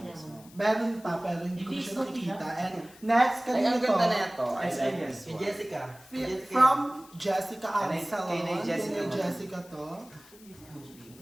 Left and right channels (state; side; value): noise; left; hiss, 23 dB below the sound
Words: mo? Meron pa pero hindi ko Hindi, siya sorry, nakikita. ha? And next, Ay, kanina ang to. ganda na ito. I Ay, like ay, this kay one. Jessica. From Jessica Kay Absalon. Nay Jessica Kay mo. Jessica to.